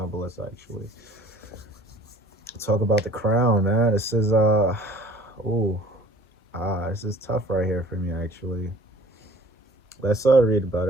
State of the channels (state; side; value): normal; both; correlation 0.50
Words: but let's actually talk about the crown, man. This is this is tough right here for me actually. Let's read about